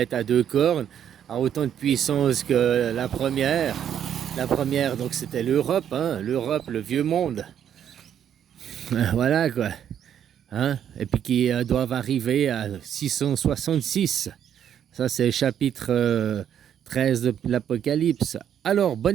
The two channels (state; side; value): quieter; left; 9.4 dB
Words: à deux cornes, a autant de puissance que la première. La première, donc c'était l'Europe, hein, l'Europe, le vieux monde. Voilà quoi. Hein? Et puis qui doivent arriver à 666. Ça, c'est le chapitre 13 de l'Apocalypse. Alors,